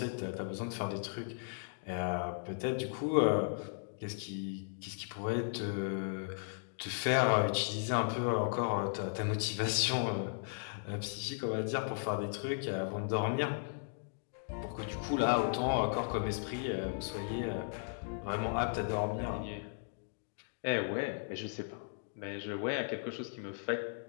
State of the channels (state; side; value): silent; right; digital silence